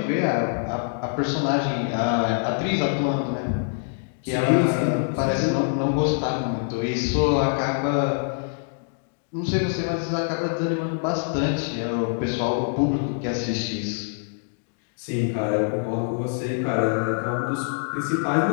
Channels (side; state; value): right; silent; digital silence